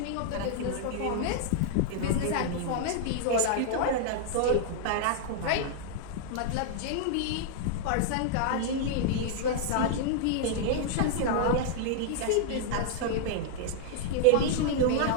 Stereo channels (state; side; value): different; both; correlation -0.01